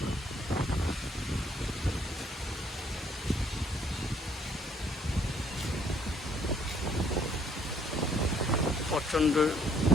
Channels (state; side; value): normal; both; correlation 0.65